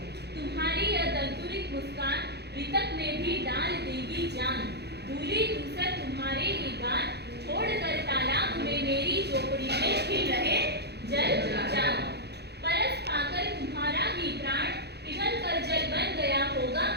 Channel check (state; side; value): late; left; 0.48 ms